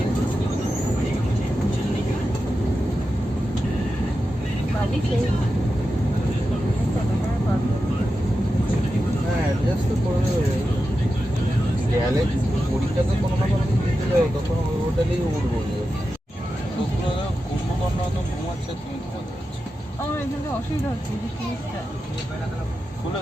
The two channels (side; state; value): both; normal; correlation 0.91